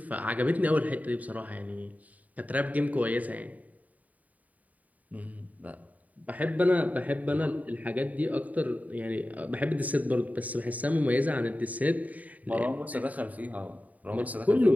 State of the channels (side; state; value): left; late; 0.073 ms